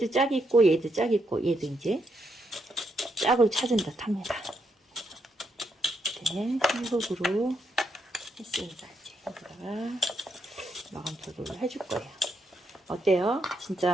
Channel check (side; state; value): both; normal; correlation 0.79